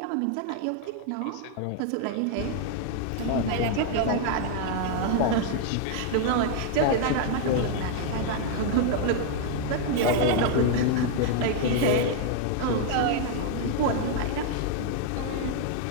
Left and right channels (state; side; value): different; both; correlation 0.00